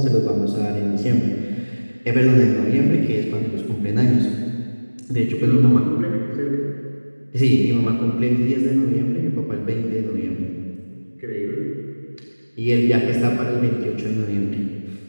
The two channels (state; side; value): inverted; both; correlation -1.00